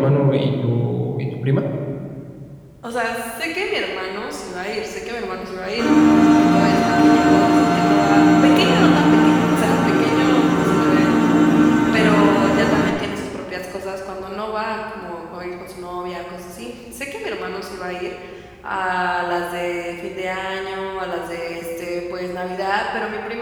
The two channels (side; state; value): both; identical; correlation 1.00